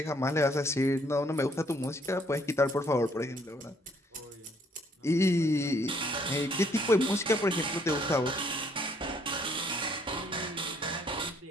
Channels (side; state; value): both; normal; correlation 0.66